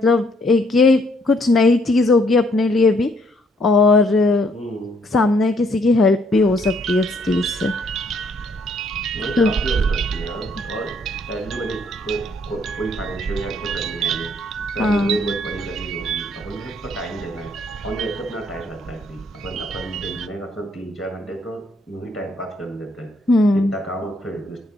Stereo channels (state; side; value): normal; both; correlation 0.68